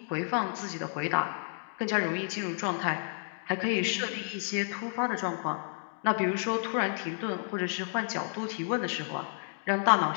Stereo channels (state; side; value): silent; right; digital silence